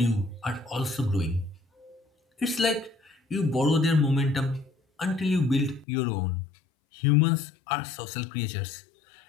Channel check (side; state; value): right; drops out; at 5.9 s